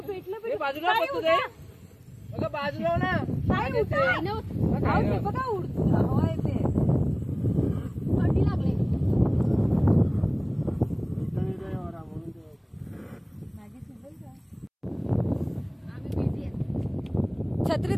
भेटलं बाजूला बघू दे, बघा बाजूला ना काय होतंय बघा, उडतं हवा येते, थंडी लागले. छत्री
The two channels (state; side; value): identical; both; correlation 1.00